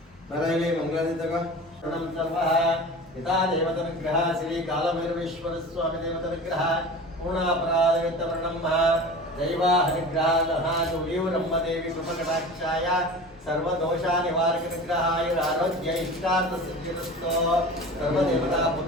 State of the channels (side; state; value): both; normal; correlation 0.35